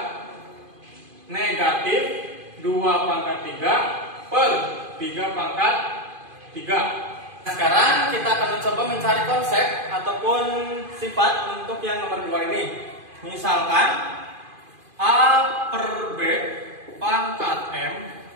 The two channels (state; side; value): late; left; 2.5 ms